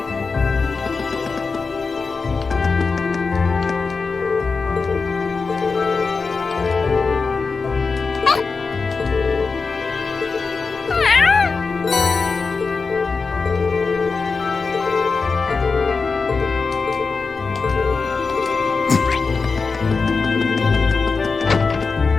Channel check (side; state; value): right; quieter; 4.6 dB